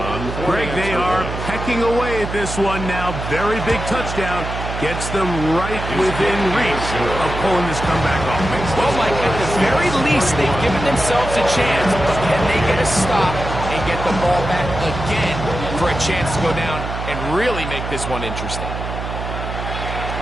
Greg, they are pecking away at this one now. Very big touchdown. Gets them right within reach of pulling this comeback off. Well, Mike, at the very least, they've given themselves a chance, but can they get a stop and get the ball back again for a chance to go down and really make this one interesting?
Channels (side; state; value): right; noise; hum, 6 dB below the sound